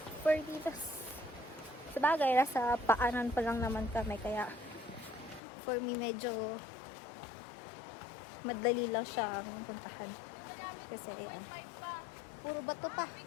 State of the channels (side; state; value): right; drops out; at 5.4 s